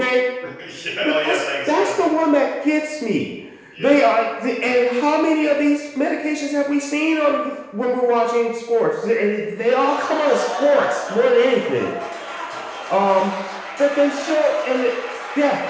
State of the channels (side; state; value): both; identical; correlation 1.00